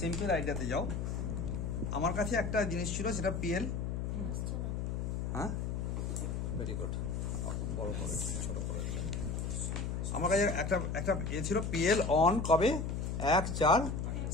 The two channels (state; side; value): noise; left; hum, 2 dB below the sound